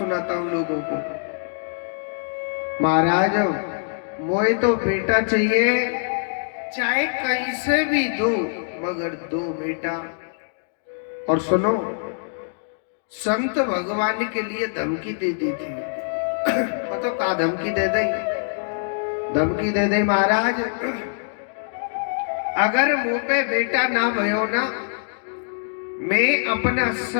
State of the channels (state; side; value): silent; right; digital silence